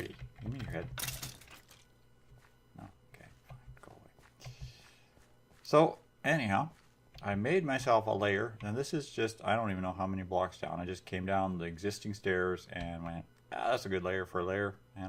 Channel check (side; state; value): both; identical; correlation 1.00